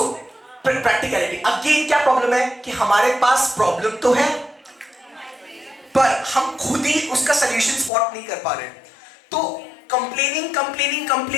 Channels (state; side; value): drops out; right; at 7.9 s